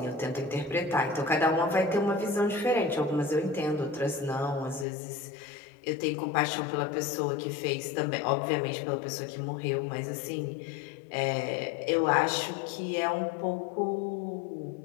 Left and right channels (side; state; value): right; drops out; at 4.9 s